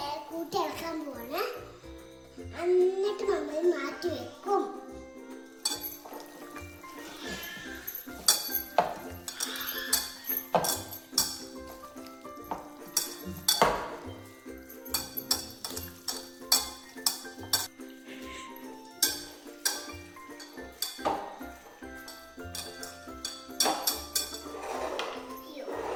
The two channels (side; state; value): both; identical; correlation 1.00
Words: കൂട്ടി ഇളക്കാൻ പോവാണ്. എന്നിട്ട് മമ്മി മാറ്റി വെക്കും.